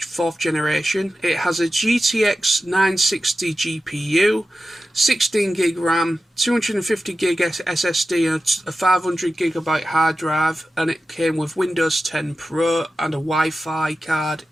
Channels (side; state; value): both; normal; correlation 0.93